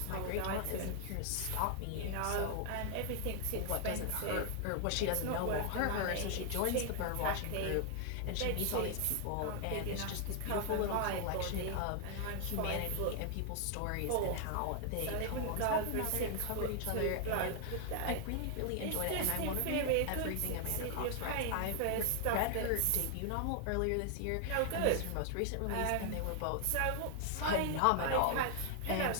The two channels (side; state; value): both; different; correlation 0.00